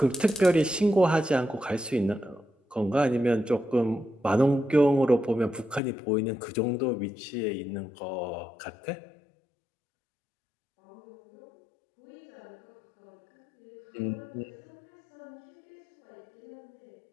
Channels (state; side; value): drops out; right; at 5.8 s